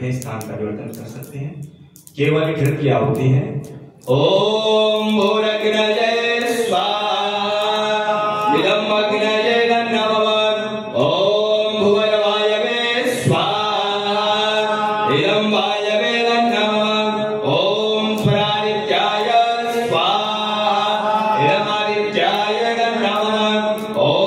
स्थान परिवर्तन कर सकते हैं। केवल घृत की आहुति है। ओम भूरग्नये स्वाहा इदं अग्नये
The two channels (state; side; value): identical; both; correlation 1.00